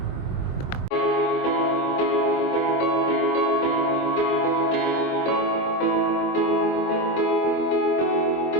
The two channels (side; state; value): right; late; 23 ms